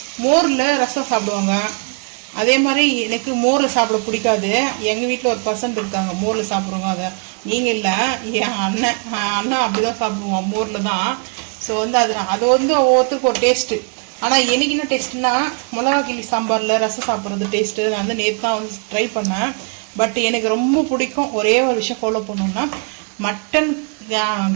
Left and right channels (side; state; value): left; quieter; 39.5 dB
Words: மோரில் ரசம் சாப்பிடுவாங்க. அதே மாதிரி எனக்கு மோரில் சாப்பிட பிடிக்காது. எங்கள் வீட்டில் ஒரு பர்சன்ட் இருக்காங்க மோரில் சாப்பிடுவாங்க. அதை நீங்கள் இல்லை, என் அண்ணன் அப்படி தான் சாப்பிடுவோம் மோரில் தான். ஸோ வந்து அது வந்து ஒவ்வொருத்தருக்கு ஒரு டேஸ்ட்டு. ஆனால் எனக்கு என்ன டேஸ்ட்டுன்னா மிளகா கிள்ளி சாம்பாரில் ரசம் சாப்பிட்றது டேஸ்ட்டு. நான் வந்து நேற்று தான் வந்து ட்ரை பண்ணேன். பட் எனக்கு ரொம்ப பிடிக்கும். ஒரே ஒரு விஷயம் ஃபாலோ பண்ணோம்னா மட்டன்